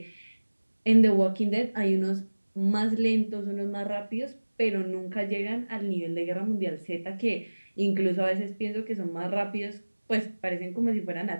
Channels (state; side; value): inverted; both; correlation -1.00